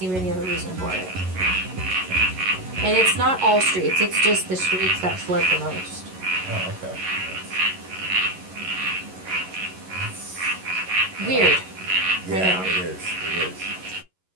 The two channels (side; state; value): left; late; 11 ms